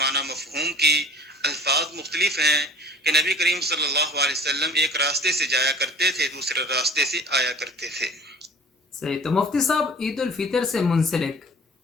مفہوم کی الفاظ مختلف ہیں کہ نبی کریم صلی اللہ علیہ وسلم ایک راستے سے جایا کرتے تھے، دوسرے راستے سے آیا کرتے تھے۔ صحیح۔ تو مفتی صاحب، عید الفطر سے منسلک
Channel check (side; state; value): both; normal; correlation 0.45